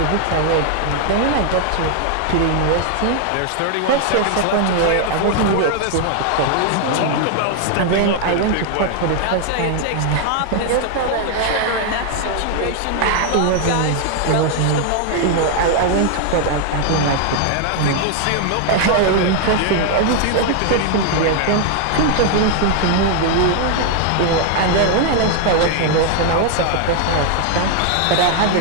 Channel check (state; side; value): different; both; correlation 0.00